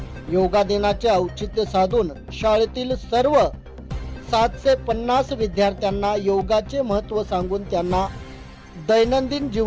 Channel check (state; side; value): identical; both; correlation 1.00